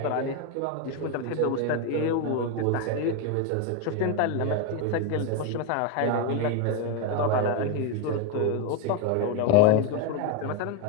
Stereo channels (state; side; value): different; both; correlation 0.02